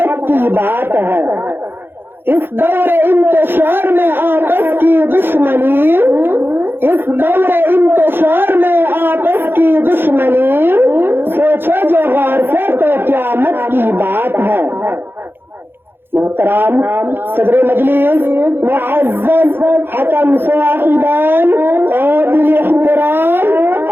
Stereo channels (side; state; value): left; late; 0.10 ms